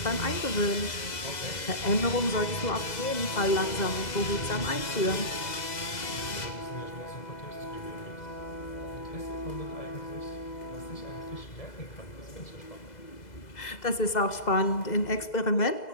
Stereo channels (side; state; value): right; late; 2.0 ms